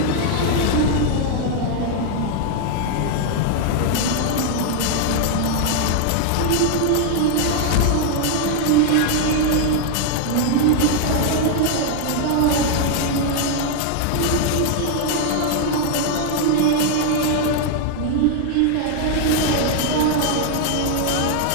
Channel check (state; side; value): different; both; correlation 0.00